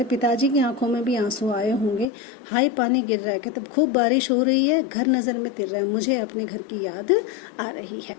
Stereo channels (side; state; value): right; drops out; at 2.1 s